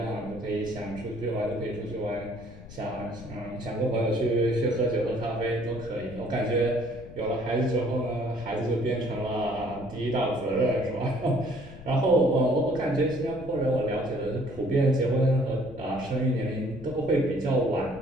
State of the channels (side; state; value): left; noise; rumble, 16 dB below the sound